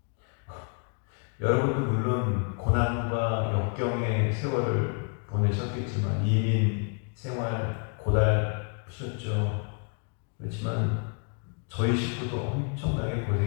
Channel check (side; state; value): right; quieter; 39.3 dB